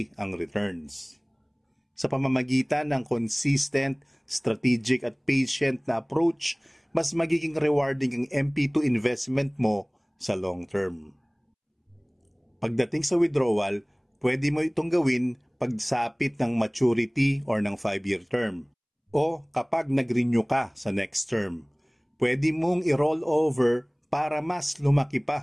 ang returns. Sa pamamagitan ng consistent, strategic at patient na approach, mas magiging rewarding ang MP2 investment mo sa long term. Pagdating sa withdrawal, pwede mo itong gawin pagsapit ng maturity or ng 5-year term o kapag nag-renew ka sa next term. Pwede mong i-roll over para mas lumaki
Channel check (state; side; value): identical; both; correlation 1.00